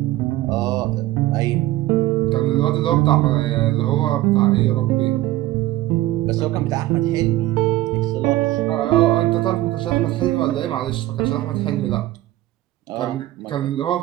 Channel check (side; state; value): left; quieter; 16.2 dB